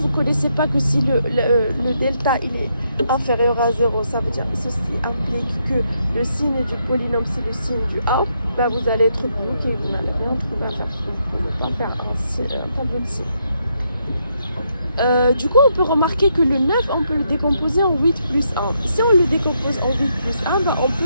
ne connaissez pas que si le delta il est inférieur à 0, ça veut dire que ceci implique que le signe du polynôme c'est le signe du A, bah vous allez être bloqué, vous n'allez rien trouver à faire, vous ne pouvez pas faire un tableau de signe. Du coup, on peut remarquer que le 9, on peut le décomposer en 8 plus 1. Si on le décompose en 8 plus 1, bah, on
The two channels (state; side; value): inverted; both; correlation -0.78